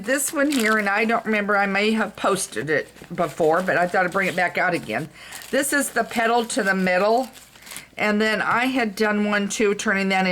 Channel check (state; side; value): identical; both; correlation 1.00